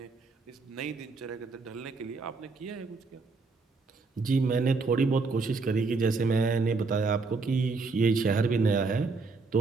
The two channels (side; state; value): left; quieter; 4.1 dB